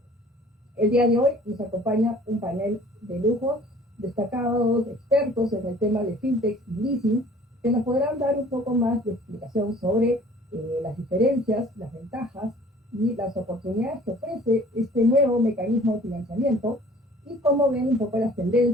El día de hoy nos acompaña un panel de lujo, destacados expertos en el tema de fintech y leasing, que nos podrán dar un poco más de explicación sobre las diferencias, las ventajas y las oportunidades que ofrece este nuevo mecanismo de financiamiento, y cómo ven un poco las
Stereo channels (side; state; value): both; normal; correlation 0.51